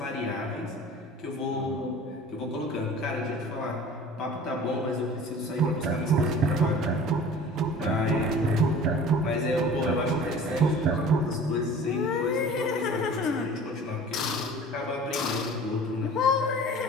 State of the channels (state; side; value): normal; both; correlation 0.43